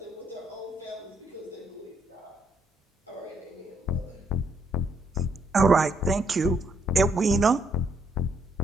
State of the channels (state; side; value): normal; both; correlation 0.72